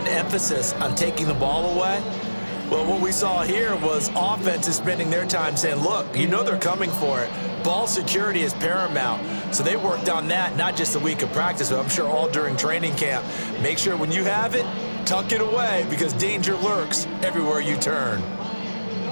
emphasis on taking the ball away. Well, what we saw here was offenses spending their time saying, look, you know they're coming for it. Ball security is paramount. So they worked on that, not just a week of practice, but I'm sure all during training camp. Make sure when you have it, tuck it away because danger lurks everywhere you turn.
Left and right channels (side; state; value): both; inverted; correlation -1.00